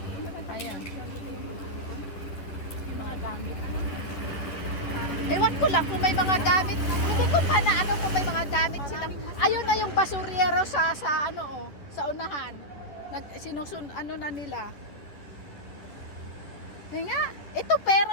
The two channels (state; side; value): late; right; 10 ms